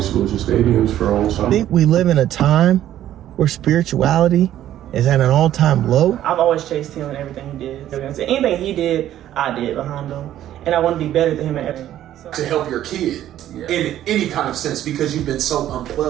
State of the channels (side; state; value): left; quieter; 12.2 dB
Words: Solution Stadiums for a whole summer. I think we live in a time where spirituality is at an all-time low. I've always chased him and everything he did. Anything he did, I did behind him. And I want to be better than him at everything. So. To help your kid in any kind of sense, because you've been so